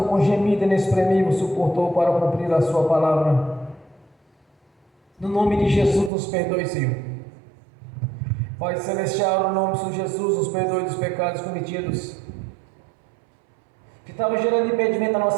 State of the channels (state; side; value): drops out; left; at 6.1 s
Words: com gemido inexprimível, suportou para cumprir a sua palavra. No nome de Jesus, nos perdoe, Senhor. Pai Celestial, no nome do Senhor Jesus, nos perdoe dos pecados cometidos, que estava gerando impedimento na